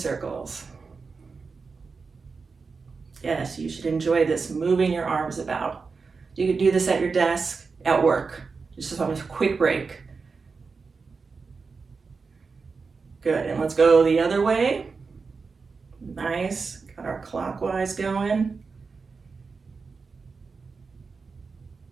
Yes, you should enjoy this, moving your arms about. You could do this at your desk, at work. Just on a quick break. Good, and let's go the other way. Nice, got our clockwise going.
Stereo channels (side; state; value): left; quieter; 4.7 dB